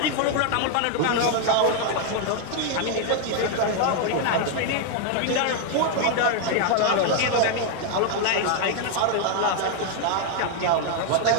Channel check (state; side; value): different; both; correlation 0.00